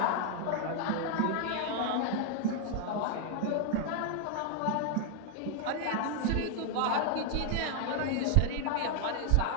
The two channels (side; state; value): both; different; correlation 0.00